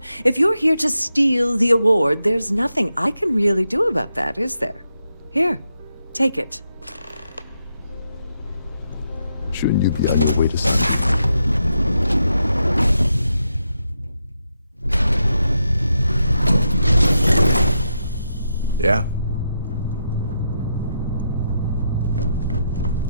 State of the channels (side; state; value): both; inverted; correlation -0.83